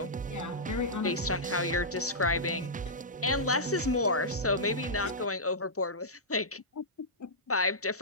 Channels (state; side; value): normal; both; correlation -0.13